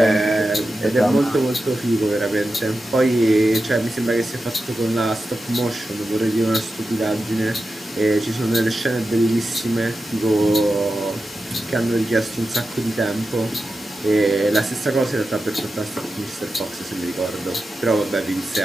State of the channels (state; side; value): normal; both; correlation 0.91